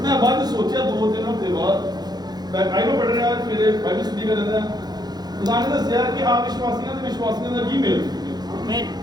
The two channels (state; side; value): late; left; 0.20 ms